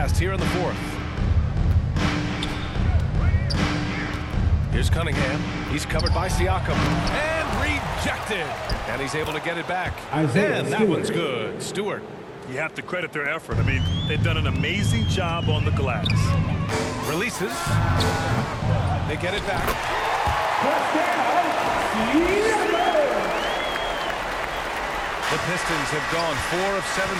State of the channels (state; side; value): identical; both; correlation 1.00